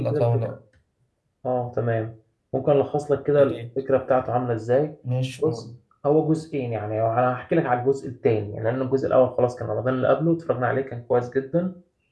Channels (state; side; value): identical; both; correlation 1.00